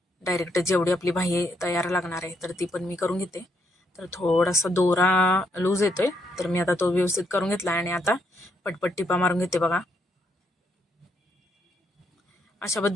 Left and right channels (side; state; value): both; normal; correlation 0.75